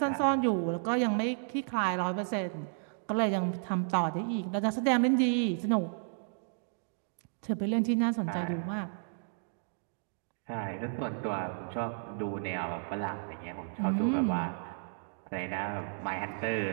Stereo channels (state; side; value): silent; left; digital silence